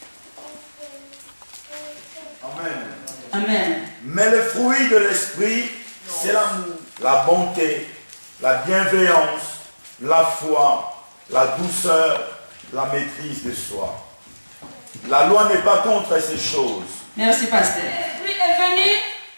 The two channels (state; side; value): inverted; both; correlation -1.00